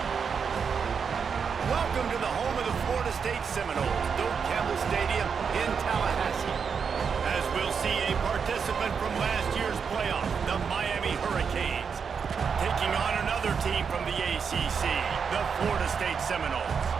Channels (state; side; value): quieter; left; 6.3 dB